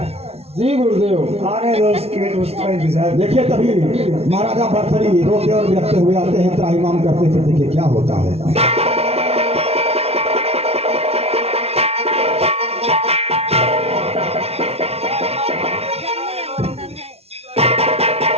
जी गुरुदेव। आने दो उसका इंतजार। देखिए तभी महाराजा भरथरी रोते और बिलखते हुए आते हैं, त्राहिमाम करते। फिर देखिए क्या होता है।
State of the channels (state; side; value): late; left; 0.30 ms